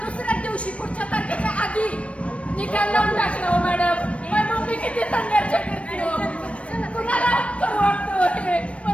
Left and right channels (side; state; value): right; late; 0.062 ms